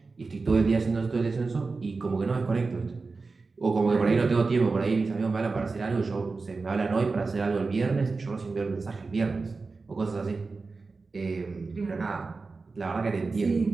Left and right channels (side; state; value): left; quieter; 4.1 dB